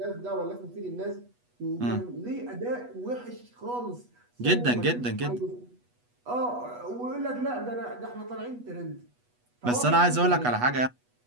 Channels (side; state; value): left; late; 8.2 ms